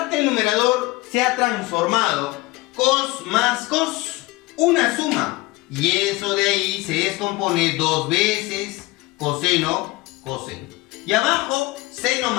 del numerador se ha transformado cos más cos, una suma. Y eso de ahí se descompone dos veces coseno, coseno. Y abajo, seno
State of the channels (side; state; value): right; quieter; 21.1 dB